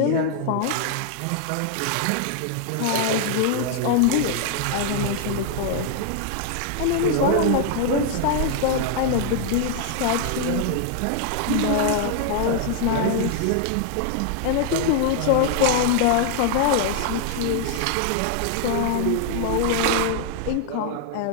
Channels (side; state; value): both; different; correlation 0.00